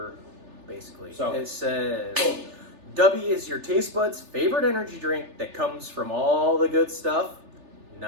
basically. So it says, boom. "DUBBY is your taste buds' favorite energy drink that comes from all the good stuff,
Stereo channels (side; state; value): left; late; 3.4 ms